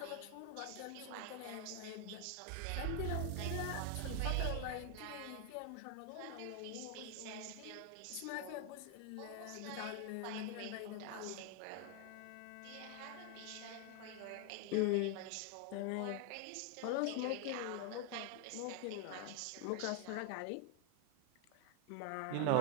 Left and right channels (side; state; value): both; different; correlation 0.01